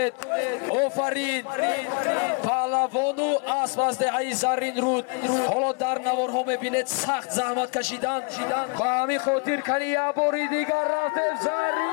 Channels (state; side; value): quieter; right; 35.8 dB